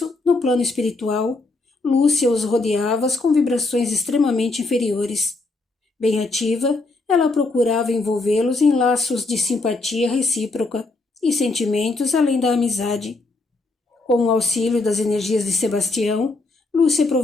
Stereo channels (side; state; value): right; quieter; 3.4 dB